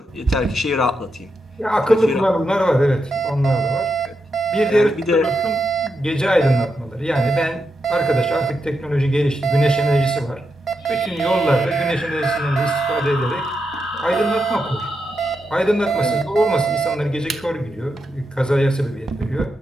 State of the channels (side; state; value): both; normal; correlation 0.85